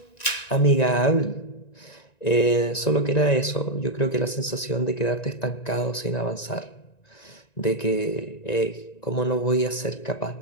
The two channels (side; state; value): right; late; 1.9 ms